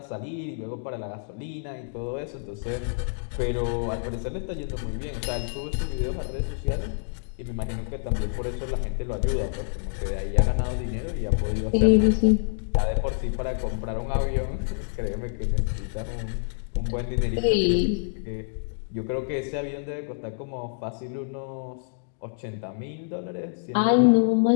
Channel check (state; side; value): silent; right; digital silence